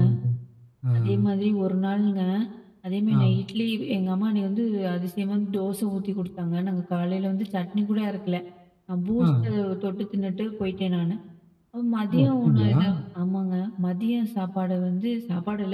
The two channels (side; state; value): both; identical; correlation 1.00